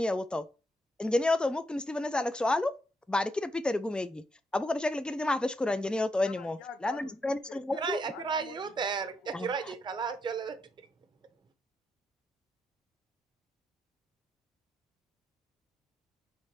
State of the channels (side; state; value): both; normal; correlation 0.81